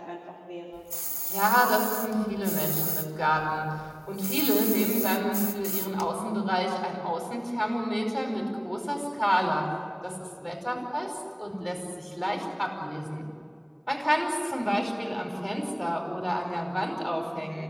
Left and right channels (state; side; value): identical; both; correlation 1.00